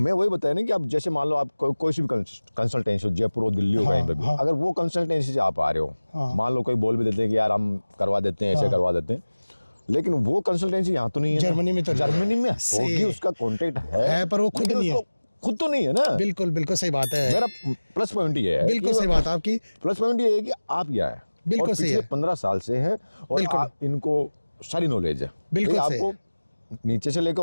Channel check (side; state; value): both; inverted; correlation -1.00